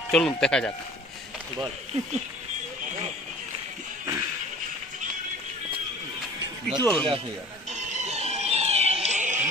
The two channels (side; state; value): both; normal; correlation 0.46